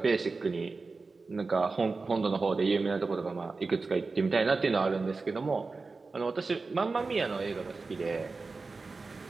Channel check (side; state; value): left; quieter; 4.0 dB